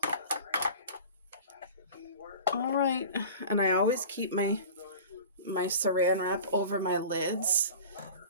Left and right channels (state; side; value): inverted; both; correlation -0.38